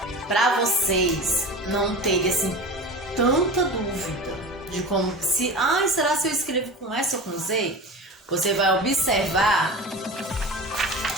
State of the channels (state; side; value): normal; both; correlation 0.32